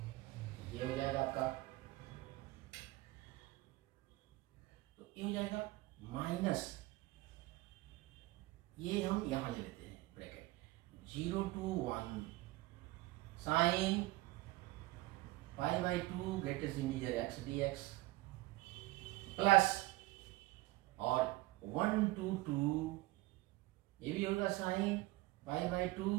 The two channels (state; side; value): quieter; left; 19.6 dB